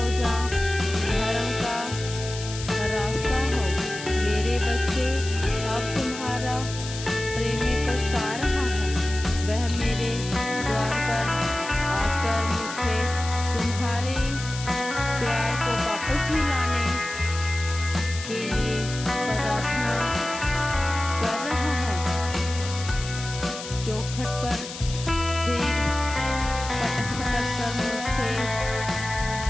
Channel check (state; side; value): noise; left; hiss, 10 dB below the sound